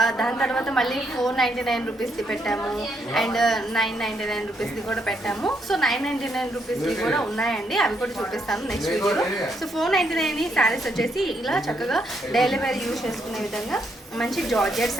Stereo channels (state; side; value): normal; both; correlation 0.75